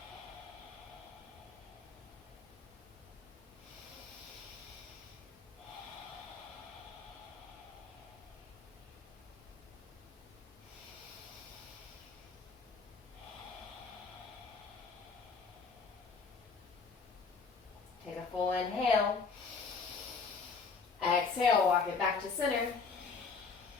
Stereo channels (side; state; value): right; quieter; 5.0 dB